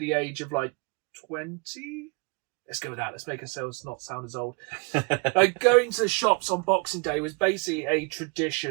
age of like 20. Let's go with that. Let's make ourselves not sound as old. Like going to the shops on Boxing Day was basically a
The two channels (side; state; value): left; quieter; 33.6 dB